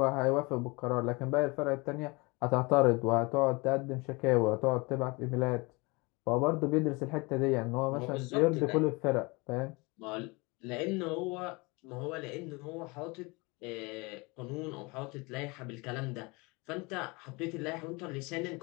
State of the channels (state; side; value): quieter; right; 26.5 dB